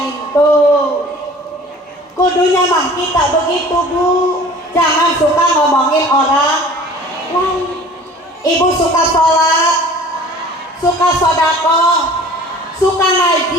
Tuh kudunya mah kita begitu Bu, jangan suka ngomongin orang lain. Ibu suka sholat, suka sodako, suka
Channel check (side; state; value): both; normal; correlation 0.47